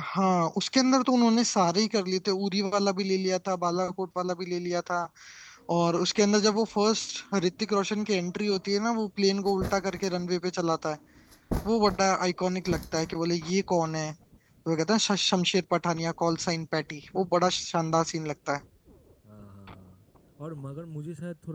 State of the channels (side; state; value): both; identical; correlation 1.00